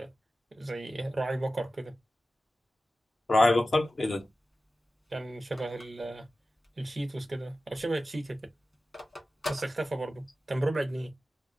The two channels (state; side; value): normal; both; correlation 0.95